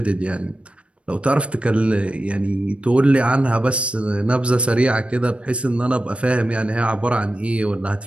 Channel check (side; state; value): left; late; 0.060 ms